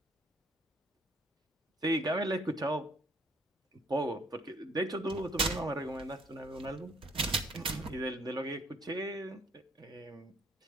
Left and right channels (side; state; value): both; normal; correlation 0.62